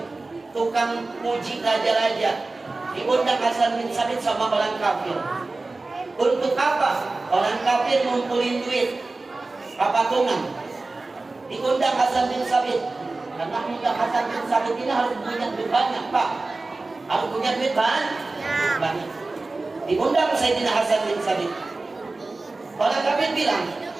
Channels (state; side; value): quieter; left; 3.4 dB